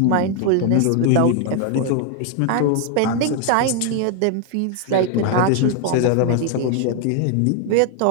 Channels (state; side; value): different; both; correlation 0.00